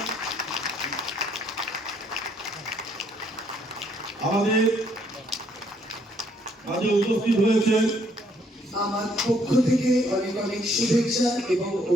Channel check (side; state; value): both; normal; correlation 0.67